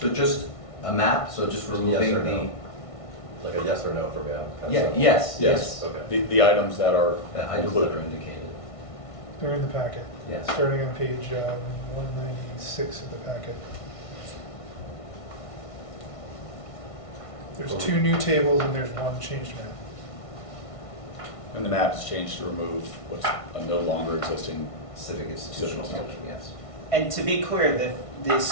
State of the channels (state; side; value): late; right; 1.5 ms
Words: just a map, so just Yes removing or the. no? Like a yes or no from you? Yeah, yes, yes. Okay. The items that are The items that included. are indicated, They're in the packet, yes. starting on page 196 of the packet. There's 2 new tables and there's 1 changed map. And the map is changed to remove what's a no longer existing. Civic institutional Civic function, yes. And to be clear, the